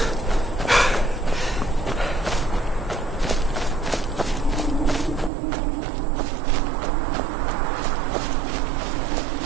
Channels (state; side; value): drops out; left; at 5.3 s